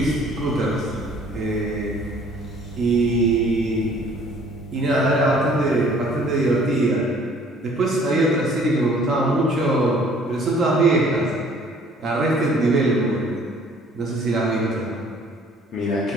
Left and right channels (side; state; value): both; normal; correlation 0.56